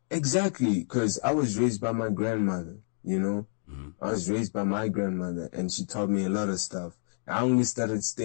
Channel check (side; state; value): right; silent; digital silence